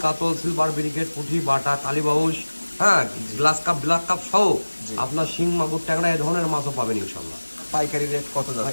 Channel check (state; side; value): inverted; both; correlation -1.00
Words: কাতল, সিলভার ব্রিগেড, পুঁটি, বাটা, কালীবাউস, হ্যাঁ, গ্লাস কাপ, ব্ল্যাক কাপ সহ আপনার শিং, মাগুর, ট্যাংরা এই ধরনের মাছও পাবেন ইনশাল্লাহ। পাইকারি রেট কত